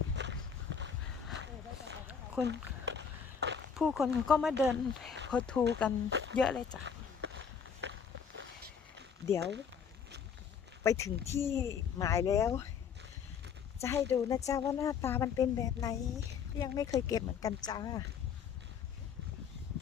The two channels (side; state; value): right; quieter; 6.9 dB